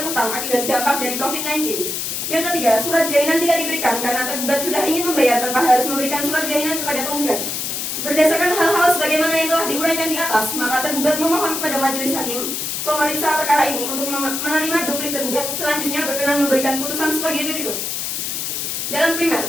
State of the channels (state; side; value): noise; left; hiss, 3 dB below the sound